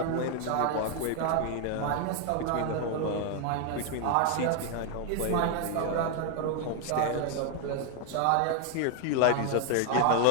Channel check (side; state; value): both; different; correlation 0.00